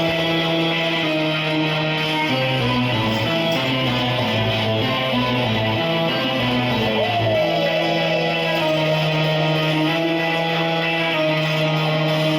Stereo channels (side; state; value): both; identical; correlation 1.00